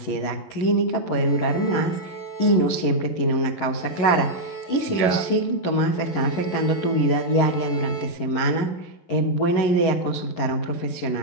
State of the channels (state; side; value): late; right; 11 ms